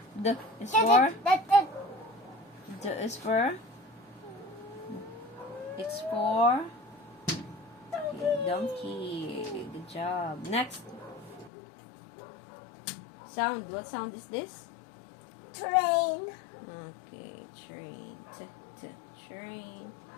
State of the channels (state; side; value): drops out; right; at 11.5 s